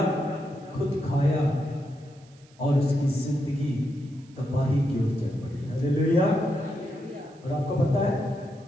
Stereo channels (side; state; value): right; noise; hiss, 29 dB below the sound